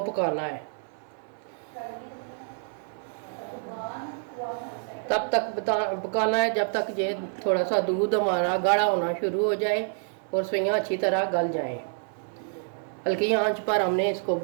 पकाना है। तब तक पकाना है जब तक ये थोड़ा सा दूध हमारा गाढ़ा होना शुरू हो जाए और सफेइयाँ अच्छी तरह गल जाएं। हल्की आंच पर हमने इसको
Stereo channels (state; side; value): silent; left; 60 dB below the other